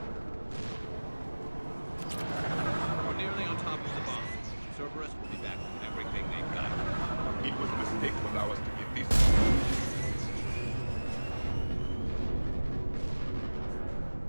We're nearly on top of the bomb. Cerberus will be back with everything they've got. It was a mistake to allow us to get this.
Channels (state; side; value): inverted; both; correlation -1.00